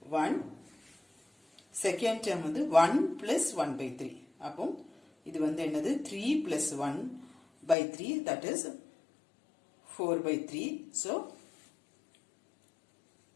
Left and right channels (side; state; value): right; drops out; at 7.8 s